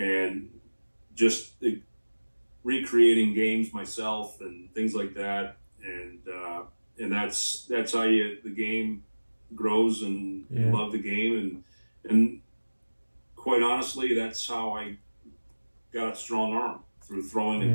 just recreating games myself and things like that, and that's how the game grows, and you love the game, and quite honestly, that's how I got a strong arm, through throwing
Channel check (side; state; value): both; inverted; correlation -1.00